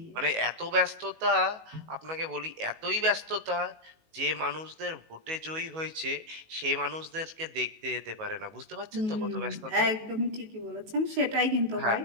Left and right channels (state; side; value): late; left; 19 ms